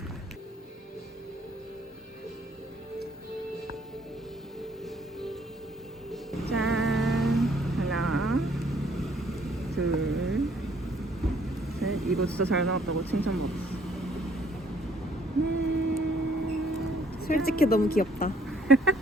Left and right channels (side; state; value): both; normal; correlation 0.63